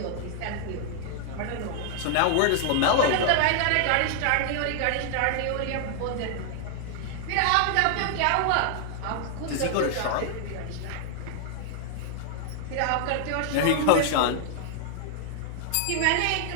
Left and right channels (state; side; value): different; both; correlation 0.00